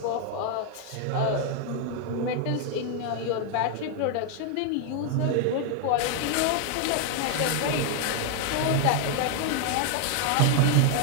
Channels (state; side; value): different; both; correlation 0.00